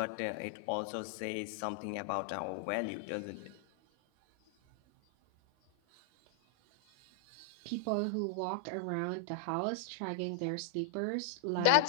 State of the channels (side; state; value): both; different; correlation -0.01